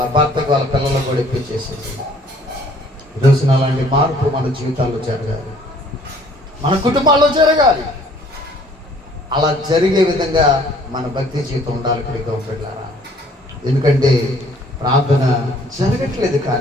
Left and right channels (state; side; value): normal; both; correlation 0.58